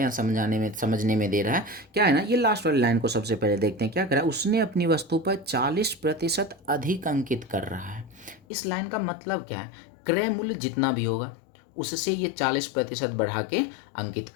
समझने में दे रहा है। क्या है ना, ये लास्ट वाली लाइन को सबसे पहले देखते हैं। क्या कर रहा है, उसने अपनी वस्तु पर 40% अधिक अंकित कर रहा है। इस लाइन का मतलब क्या है, क्रय मूल्य जितना भी होगा उससे ये 40% बढ़ा के अंकित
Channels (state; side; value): drops out; right; at 8.4 s